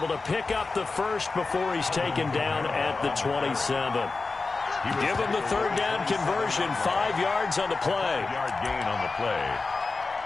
to pick up the 1st before he's taken down at the 27. Give him the 3rd down conversion. 5 yards on the play. 5-yard gain on the play.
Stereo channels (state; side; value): quieter; right; 3.9 dB